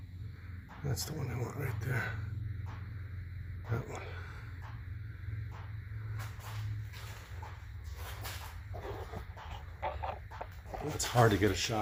That's the one I want right there. That one. It's hard to get a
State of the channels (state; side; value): identical; both; correlation 1.00